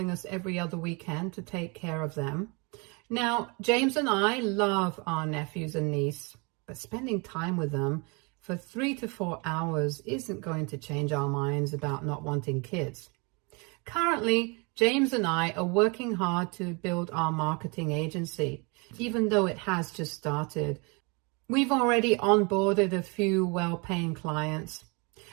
us every other weekend to take care of them. Now, James and I love our nephews and niece, but spending time with them for 3 to 4 hours isn't going to change our minds about not wanting kids. Currently, James and I are working hard to build our marketing agency, even though it has just started. We've already onboarded a few well-paying clients.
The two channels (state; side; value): quieter; left; 30.4 dB